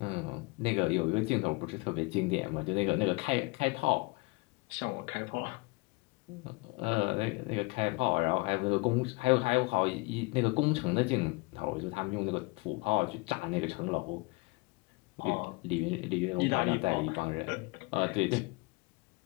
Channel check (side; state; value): right; quieter; 26.4 dB